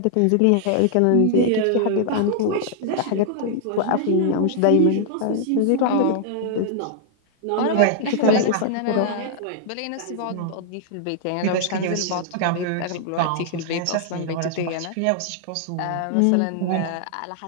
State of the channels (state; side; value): different; both; correlation -0.01